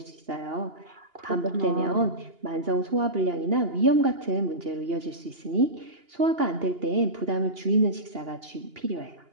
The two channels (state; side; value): late; left; 2.8 ms